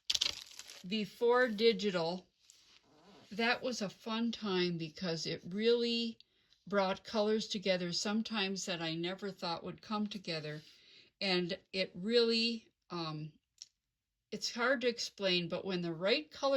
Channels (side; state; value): both; identical; correlation 1.00